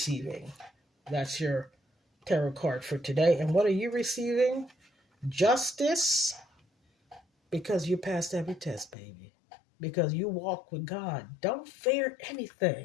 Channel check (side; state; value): right; drops out; at 9.0 s